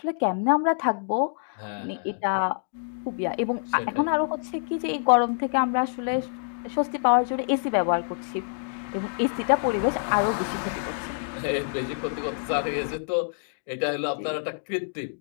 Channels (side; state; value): right; silent; digital silence